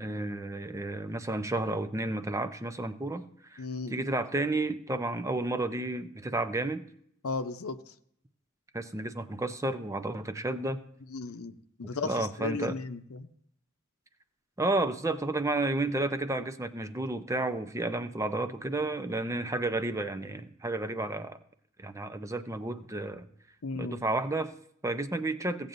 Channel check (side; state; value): both; normal; correlation 0.55